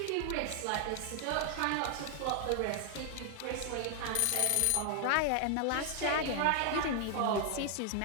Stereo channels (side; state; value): both; different; correlation 0.00